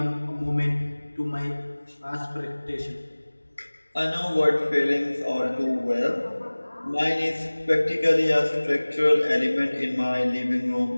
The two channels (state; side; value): inverted; both; correlation -1.00